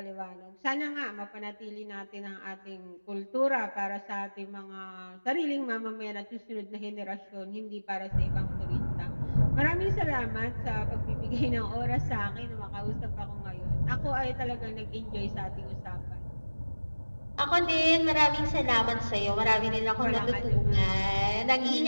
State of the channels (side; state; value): both; inverted; correlation -1.00